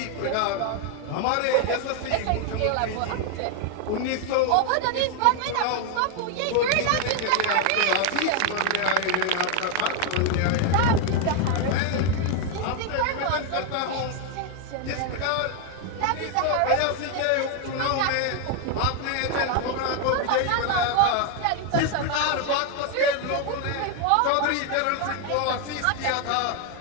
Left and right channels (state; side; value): different; both; correlation 0.01